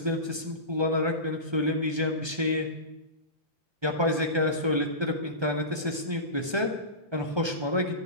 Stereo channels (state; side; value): late; left; 1.3 ms